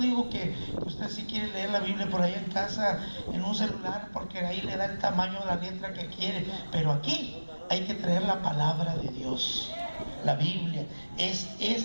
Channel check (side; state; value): both; inverted; correlation -1.00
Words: que usted si quiere leer la Biblia por ahí en casa, en un celular, porque ahí le da el tamaño de la letra que quiere, pero aquí hay que traer la palabra de Dios. La Biblia es